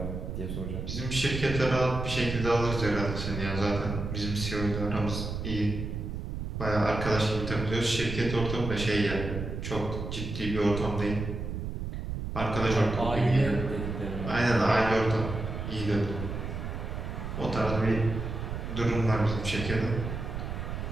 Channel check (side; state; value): right; noise; rumble, 5 dB below the sound